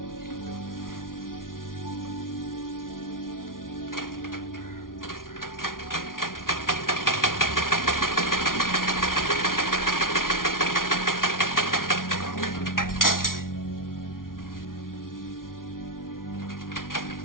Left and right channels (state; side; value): late; right; 0.90 ms